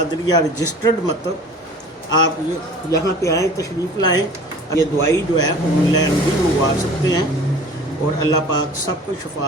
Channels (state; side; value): normal; both; correlation 0.44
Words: रजिस्टर्ड मतलब आप ये यहाँ पे आएँ, तशरीफ़ लाएँ। ये दवाई जो है ऑनलाइन भी मंगवा सकते हैं, और अल्लाह पाक सबको